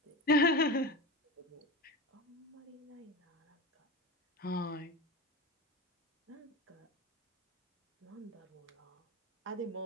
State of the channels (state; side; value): normal; both; correlation 0.24